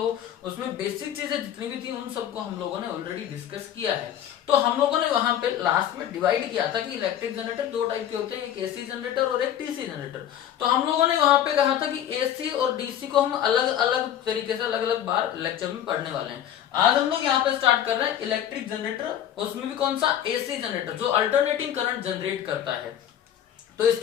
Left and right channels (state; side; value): quieter; right; 10.6 dB